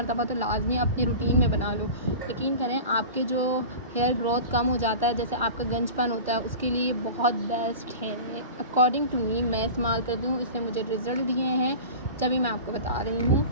तो लाजमी अपनी रूटीन में बना लो, यकीन करें आपके जो हेयर ग्रोथ कम हो जाता है, जैसे आपका गंजपन होता है, उसके लिए बहुत बेस्ट है। अकॉर्डिंग टू मी, मैं इस्तेमाल करती हूँ, इसने मुझे रिज़ल्ट दिए हैं, तभी मैं आपको बता रही हूँ।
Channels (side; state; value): both; inverted; correlation -0.34